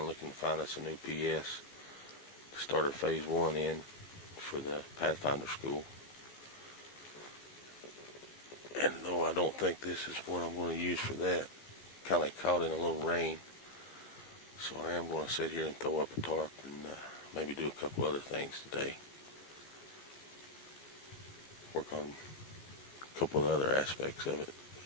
looking to find us a new PS to start our phase 1 in for the Pathfinder school. And though I don't think this is what I'm going to use for that, kind of caught in a little rain, so I am going to sit here and throw up a tarp and maybe do a couple other things today. Work on a couple of other aspects of it.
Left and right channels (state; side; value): late; right; 15 ms